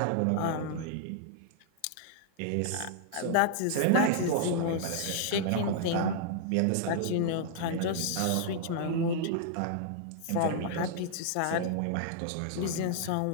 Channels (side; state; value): both; different; correlation -0.01